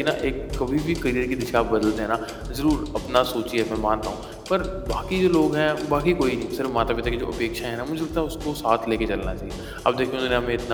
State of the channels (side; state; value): both; identical; correlation 1.00